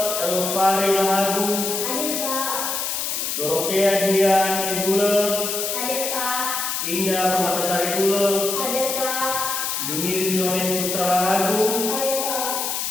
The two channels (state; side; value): noise; left; hiss, 2 dB below the sound